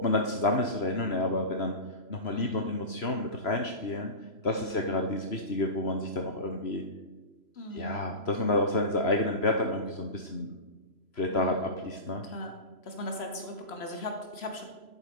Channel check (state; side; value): late; right; 3.0 ms